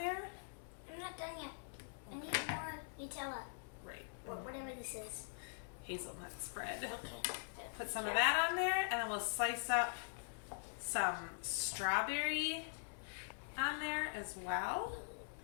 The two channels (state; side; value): silent; right; digital silence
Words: I'm not done yet. I need more Nutella. Right. Or whatever this is. Hazelnut spread. Okay. Put some of that on there, and then we'll slice up some strawberry on there as well.